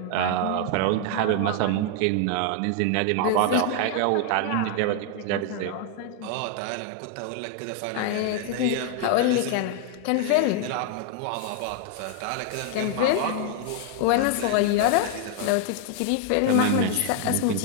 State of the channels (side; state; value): both; different; correlation 0.00